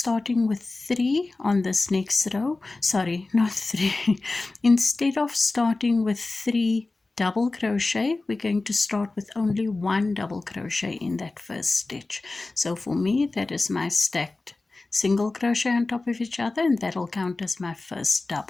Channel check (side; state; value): right; quieter; 3.3 dB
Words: with 3 on this next row, sorry, not 3, instead of starting with 3 double crochet, we're going to start with only 1 double crochet in that first stitch. So for me, that is my stacked single crochet on top of each other, and that'll count as my first